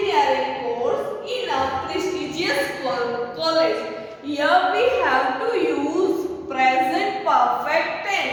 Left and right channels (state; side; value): identical; both; correlation 1.00